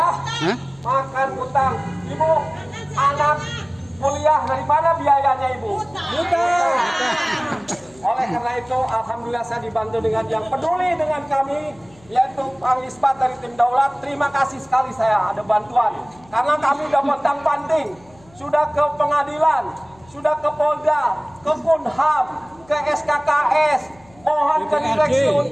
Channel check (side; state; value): left; noise; hum, 28 dB below the sound